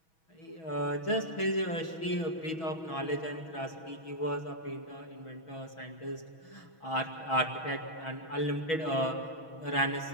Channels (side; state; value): right; late; 6.2 ms